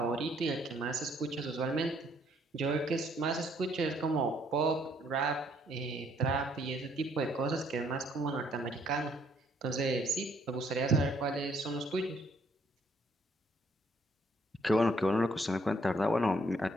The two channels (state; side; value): normal; both; correlation 0.67